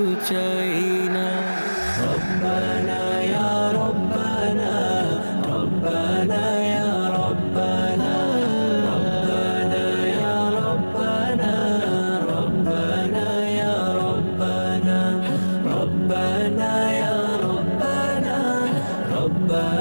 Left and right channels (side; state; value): both; inverted; correlation -1.00